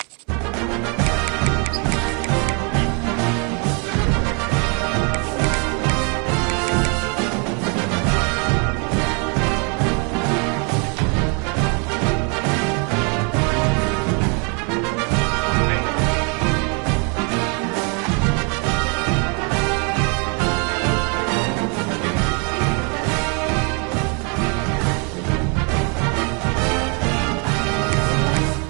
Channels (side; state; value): left; quieter; 35.3 dB